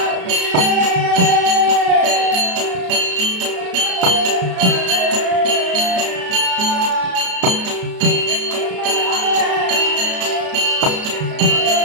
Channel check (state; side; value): late; left; 33 ms